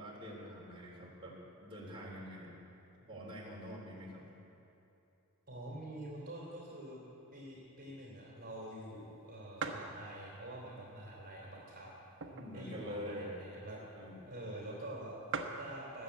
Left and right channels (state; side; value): normal; both; correlation 0.15